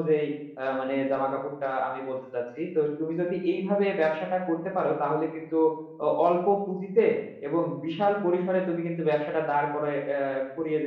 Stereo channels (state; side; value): identical; both; correlation 1.00